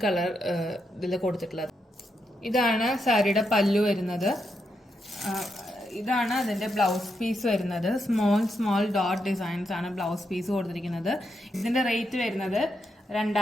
കളർ ഇതിൽ കൊടുത്തിട്ടുള്ളത്. ഇതാണ് സാരിയുടെ പല്ലു വരുന്നത്. ഇതാണ് അതിന്റെ ബ്ലൗസ് പീസ് വരുന്നത്. സ്മോൾ ഡോട്ട് ഡിസൈൻസ് ആണ് ബ്ലൗസ് പീസ് കൊടുത്തിരിക്കുന്നത്. ഇതിന്റെ റേറ്റ് വരുന്നത്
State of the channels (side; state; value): both; normal; correlation 0.83